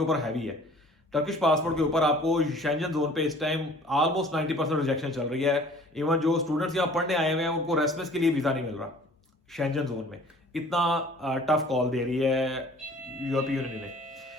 ऊपर हैवी है। टर्किश पासपोर्ट के ऊपर आपको शेंजन जोन पे इस टाइम ऑलमोस्ट 90% रिजेक्शन चल रही है। इवन जो स्टूडेंट्स यहाँ पढ़ने आए हुए हैं उनको रेसिडेंस के लिए वीजा नहीं मिल रहा शेंजन जोन में। इतना टफ कॉल दे रही है यूरोपीय यूनियन ने।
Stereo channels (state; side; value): normal; both; correlation 0.50